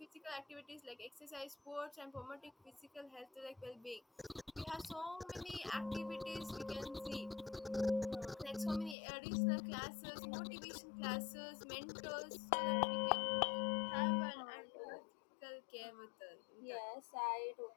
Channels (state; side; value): drops out; right; at 9.0 s